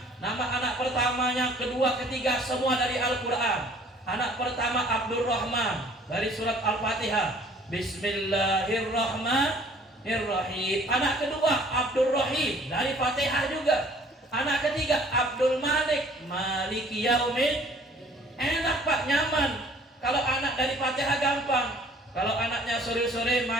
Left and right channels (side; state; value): both; normal; correlation 0.55